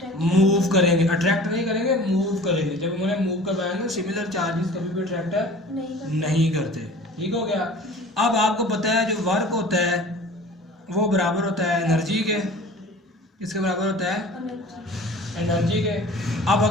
मूव करेंगे, अट्रैक्ट नहीं करेंगे, मूव करेंगे। जब उन्हें मूव करवाएंगे, सिमिलर चार्जेस कभी भी अट्रैक्ट नहीं करते। ठीक हो गया। अब आपको पता है जो वर्क होता है वो बराबर होता है एनर्जी के। किसके बराबर होता है, एनर्जी के। अब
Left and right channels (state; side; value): normal; both; correlation 0.43